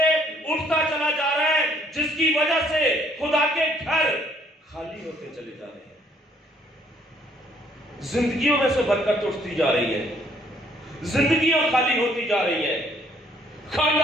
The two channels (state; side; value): normal; both; correlation 0.64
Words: اٹھتا چلا جا رہا ہے، جس کی وجہ سے خدا کے گھر خالی ہوتے چلے جا رہے ہیں. زندگیوں میں سے برکت اٹھتی جا رہی ہے، زندگیاں خالی ہوتی جا رہی ہیں،